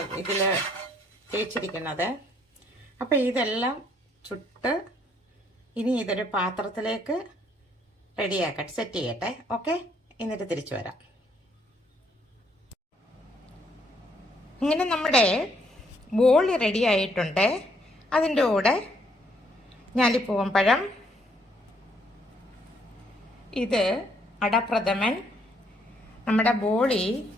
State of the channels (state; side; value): normal; both; correlation 0.69